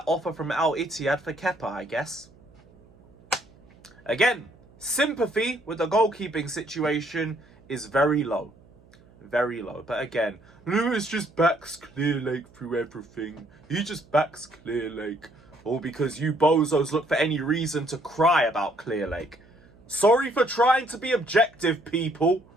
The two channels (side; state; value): right; noise; hum, 27 dB below the sound